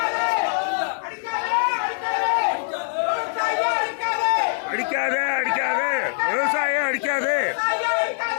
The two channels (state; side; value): silent; right; 63 dB below the other